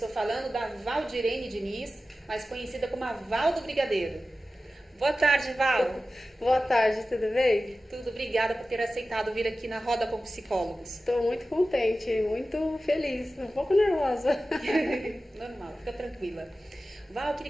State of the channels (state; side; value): normal; both; correlation 0.95